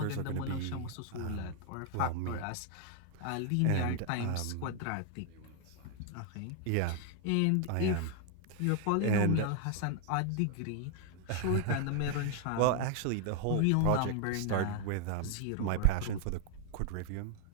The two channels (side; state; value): both; different; correlation 0.00